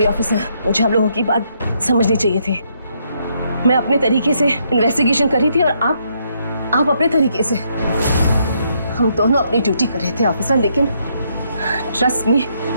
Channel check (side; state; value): both; inverted; correlation -0.74